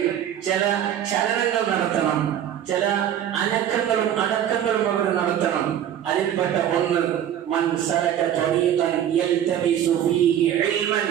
ചില ചലനങ്ങൾ നടത്തണം, ചില അനക്കങ്ങളും അടക്കങ്ങളും അവർ നടത്തണം. അതിൽപ്പെട്ട ഒന്ന്, മൻ സലക തരീഖൻ യൽതമിസു ഫീഹി ഇൽമൻ,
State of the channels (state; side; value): quieter; left; 10.3 dB